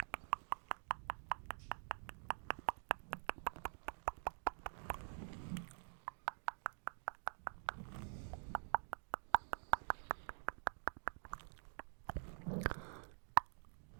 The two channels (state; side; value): silent; left; digital silence